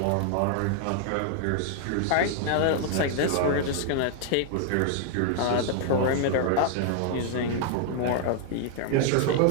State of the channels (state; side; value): different; both; correlation 0.00